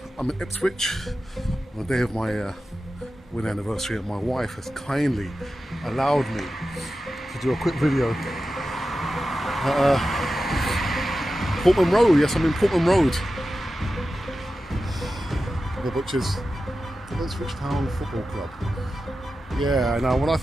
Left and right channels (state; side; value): normal; both; correlation 0.93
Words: I'm in Ipswich on the day of my wedding anniversary, and my wife has kindly allowed me to do a quick video. Portman Road, yes, I'm in Portman Road, which is the Ipswich Town Football Club. Yeah, now when I